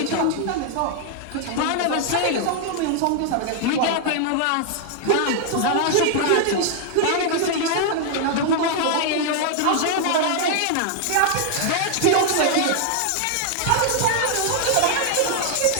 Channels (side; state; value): both; different; correlation 0.00